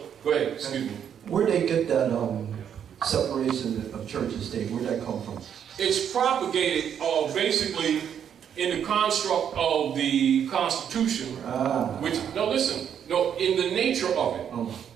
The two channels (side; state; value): left; quieter; 8.6 dB